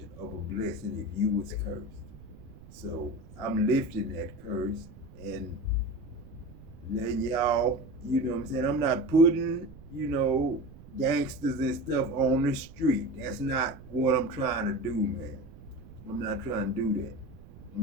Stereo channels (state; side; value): noise; right; rumble, 18 dB below the sound